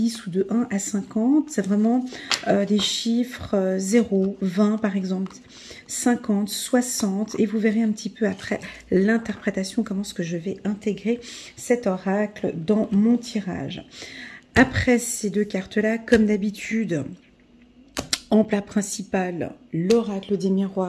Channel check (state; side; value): identical; both; correlation 1.00